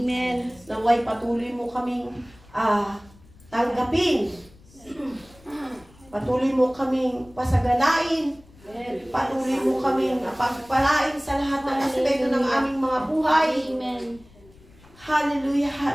Naway patuloy mo kaming tanggapin. Patuloy mo kaming pasagalain. Patuloy mo kaming pagpalain sa lahat ng aspeto ng aming mga buhay. Amen. Hallelujah,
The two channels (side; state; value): left; noise; rumble, 26 dB below the sound